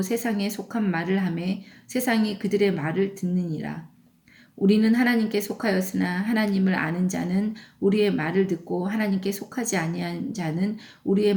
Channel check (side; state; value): both; identical; correlation 1.00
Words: 세상에 속한 말을 하매 세상이 그들의 말을 듣느니라. 우리는 하나님께 속하였으나 하나님을 아는 자는 우리의 말을 듣고 하나님께 속하지 아니한 자는 우리의